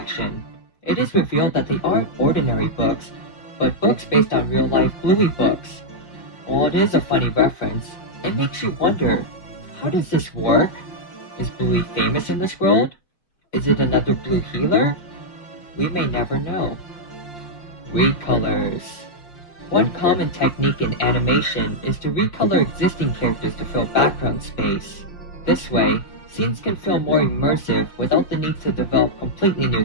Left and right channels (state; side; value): late; right; 5.5 ms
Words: it is revealed that they aren't ordinary books, but books based on real-life Bluey books. While it is a funny reference, it makes you wonder, how does this work? Is Bluey famous in this world? Is it another Blue healer? We may never know. Recolors. One common technique in animation is to recolor existing characters to fill background space. This way, scenes can feel more immersive without the need to develop completely new